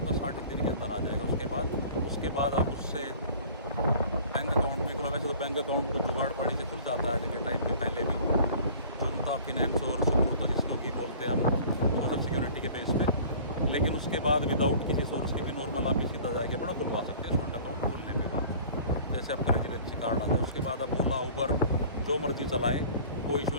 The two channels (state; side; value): inverted; both; correlation -0.46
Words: 60 दिन के अंदर आ जाएगा। उसके बाद आप उससे बैंक अकाउंट भी खुला, वैसे तो बैंक अकाउंट को जुगाड़ पड़ी से खुल जाता है आज के टाइम पे, पहले भी तो उनका फिनेंस और सुकून तो जिसको की बोलते हैं हम सोशल सिक्योरिटी के बेस पे। लेकिन उसके बाद विदाउट किसी सोर्स के भी नॉर्मल आप ही सीधा जाके अपना खुलवा सकते हैं स्टूडेंट अकाउंट खुलने के बाद। जैसे आपका रेजिडेंसी कार्ड आ जाए उसके बाद आप ओला उबर जो मर्जी चलाएं, कोई इशू